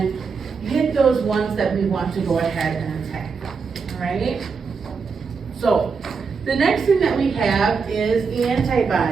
hit those ones that we want to go ahead and attack, all right? So, the next thing that we have is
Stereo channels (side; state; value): left; quieter; 5.3 dB